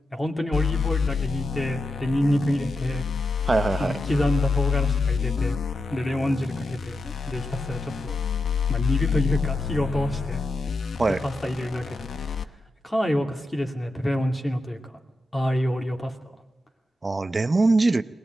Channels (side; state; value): both; normal; correlation 0.88